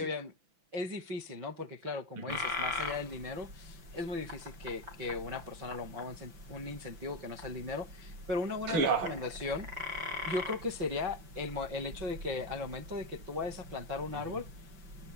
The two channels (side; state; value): left; late; 5.9 ms